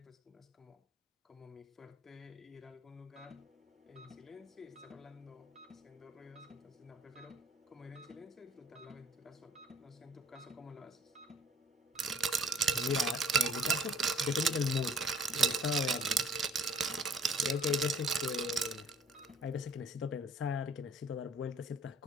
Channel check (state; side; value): normal; both; correlation 0.55